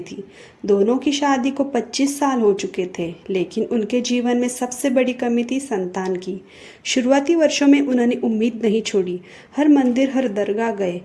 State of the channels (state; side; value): identical; both; correlation 1.00